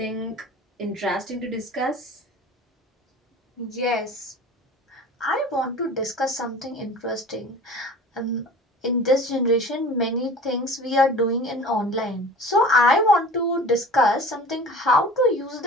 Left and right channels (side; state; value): both; normal; correlation 0.41